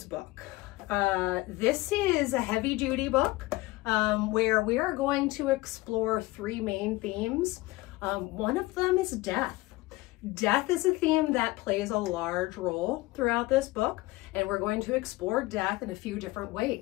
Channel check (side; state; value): right; quieter; 20.3 dB